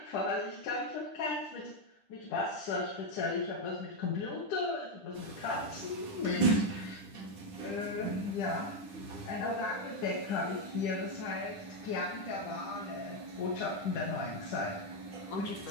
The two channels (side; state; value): right; late; 10 ms